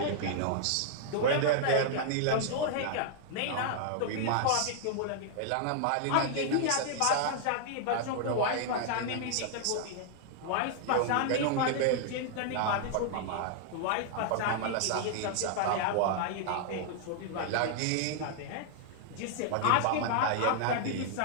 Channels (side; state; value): both; different; correlation -0.01